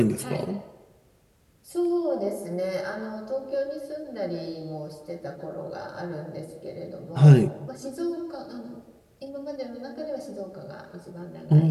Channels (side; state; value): both; identical; correlation 1.00